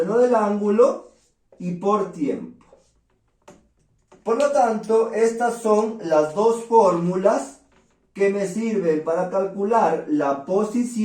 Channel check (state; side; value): identical; both; correlation 1.00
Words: del ángulo y por tiempo. Por lo tanto, estas son las dos fórmulas que me sirven para calcular la